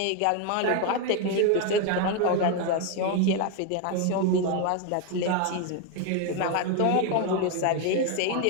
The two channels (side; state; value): both; different; correlation 0.01